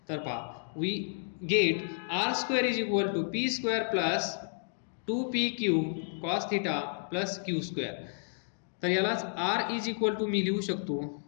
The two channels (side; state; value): right; silent; digital silence